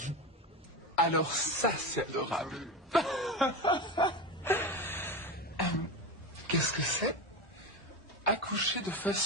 Alors ça, c'est adorable. Qu'est-ce que c'est? Accoucher de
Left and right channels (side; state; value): both; normal; correlation 0.21